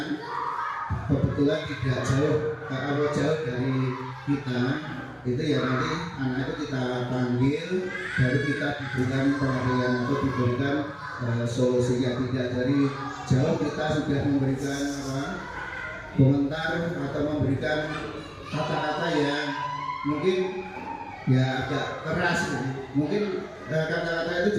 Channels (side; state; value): both; identical; correlation 1.00